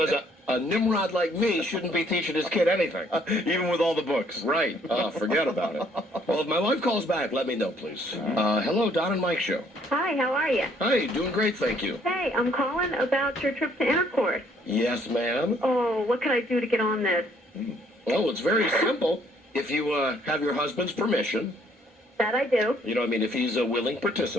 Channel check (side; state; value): both; normal; correlation 0.64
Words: a Nimrod like me shouldn't be teaching his kid anything. Even with all the books. Right. Forget about it. Well, if my wife calls back, let me know, please. Hello, Don and Mike Show. Hi, how are you? Hi, doing great, thank you. Hey, I'm calling about your trip to Intercourse. Yes, ma'am. Oh, what can I do to get on this? Oh, it's very simple. If you have your husband's permission. That I do. If he's a willing